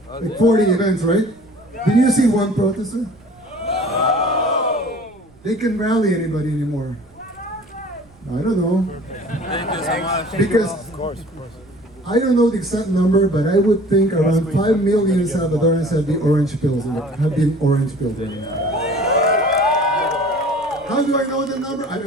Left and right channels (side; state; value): right; noise; rumble, 29 dB below the sound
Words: 40 events, right? Did you see one protester? They can rally anybody anymore. I don't know. Because I don't know the exact number, but I would think around 5 million Salvadorans have the orange pills. Have been orange pills right now. How do I know the number? I